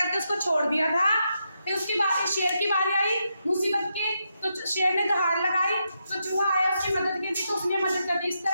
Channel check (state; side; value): inverted; both; correlation -0.83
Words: उसको छोड़ दिया था। फिर उसकी बारी, शेर की बारी आई मुसीबत की, तो शेर ने दहाड़ लगाई तो चूहा आया उसकी मदद के लिए, तो उसने मदद कर दी। इस